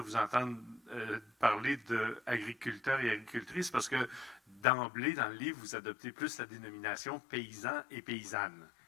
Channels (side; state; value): right; drops out; at 4.7 s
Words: vous entendre parler d'agriculteurs et agricultrices, parce que d'emblée, dans le livre, vous adoptez plus la dénomination paysan et paysanne.